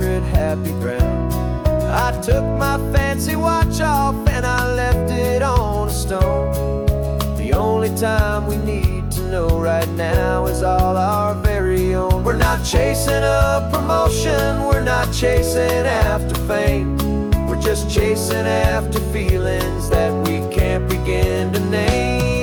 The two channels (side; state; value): both; identical; correlation 1.00